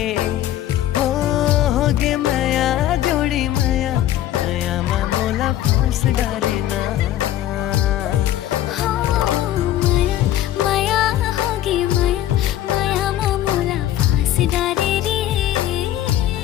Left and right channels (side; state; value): right; quieter; 12.9 dB